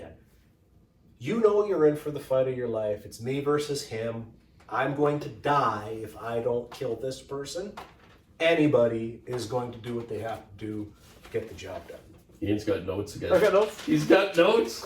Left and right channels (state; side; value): identical; both; correlation 1.00